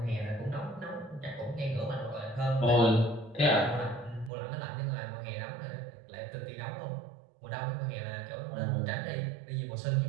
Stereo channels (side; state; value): left; drops out; at 4.3 s